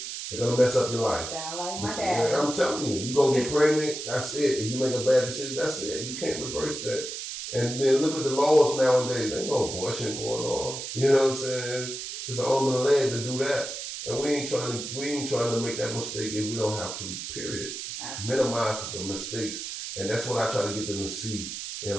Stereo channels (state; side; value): noise; right; hiss, 7 dB below the sound